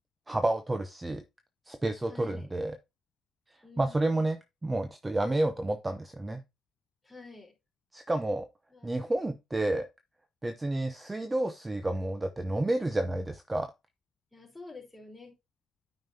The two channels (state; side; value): normal; both; correlation 0.97